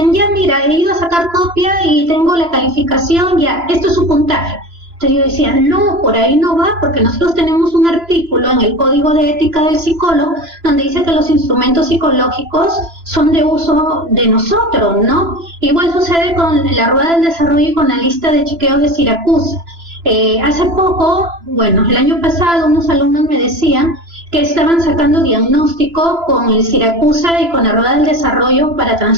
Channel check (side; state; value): left; late; 3.0 ms